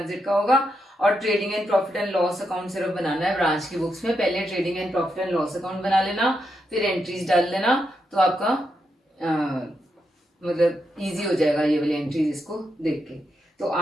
का होगा, और trading and profit and loss account सिर्फ बनाना है branch की books में। पहले trading and profit and loss account बना लेना, फिर एंट्रीज डाल लेना, तो आपका मतलब इजी हो जाएगा ये वाली एंट्रीज इसको देख के। तो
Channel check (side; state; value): both; normal; correlation 0.83